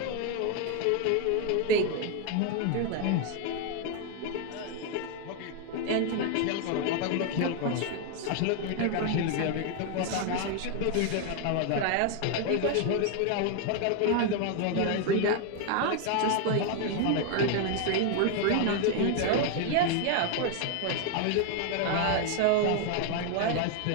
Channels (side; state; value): both; different; correlation 0.01